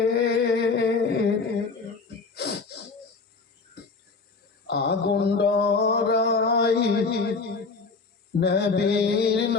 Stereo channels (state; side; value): quieter; right; 4.3 dB